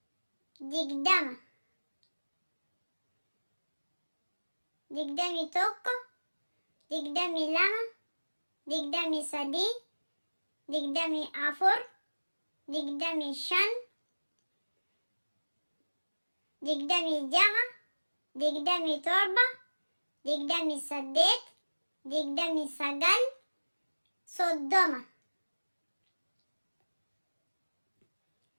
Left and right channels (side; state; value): both; inverted; correlation -1.00